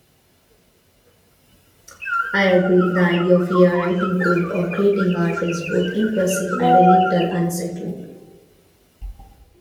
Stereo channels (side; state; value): both; identical; correlation 1.00